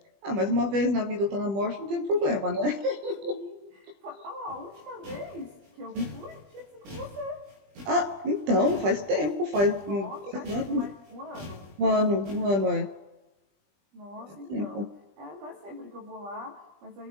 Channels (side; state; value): left; late; 20 ms